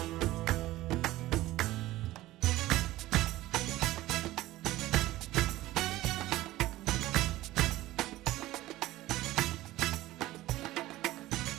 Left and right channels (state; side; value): quieter; left; 16.6 dB